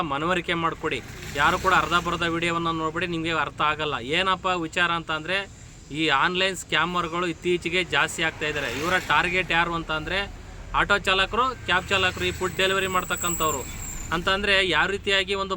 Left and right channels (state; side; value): identical; both; correlation 1.00